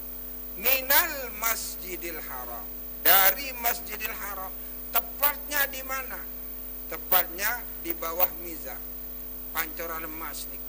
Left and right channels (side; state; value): both; identical; correlation 1.00